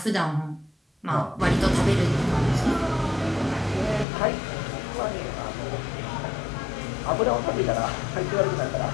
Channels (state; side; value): drops out; right; at 4.0 s